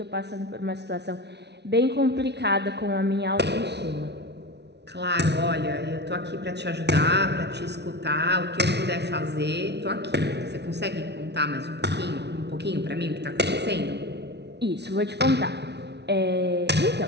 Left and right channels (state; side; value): late; left; 0.50 ms